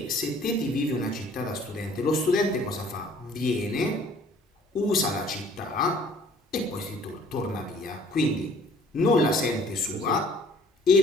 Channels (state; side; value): normal; both; correlation 0.56